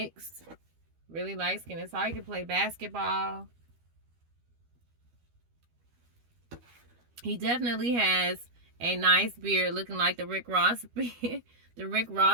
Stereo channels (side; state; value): left; late; 12 ms